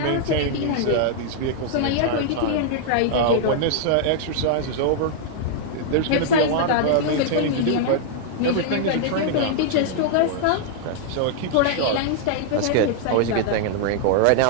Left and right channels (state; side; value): different; both; correlation -0.01